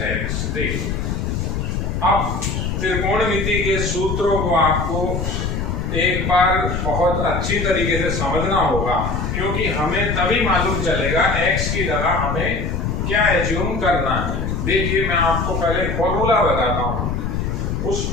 x. देखिए अब त्रिकोणमिति के सूत्रों को आपको एक बार बहुत अच्छी तरीके से समझना होगा, क्योंकि हमें तभी मालूम चलेगा x की जगह हमें क्या एज्यूम करना है। देखिए मैं आपको पहले फॉर्मूला बताता हूँ, उस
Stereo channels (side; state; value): left; noise; rumble, 1 dB below the sound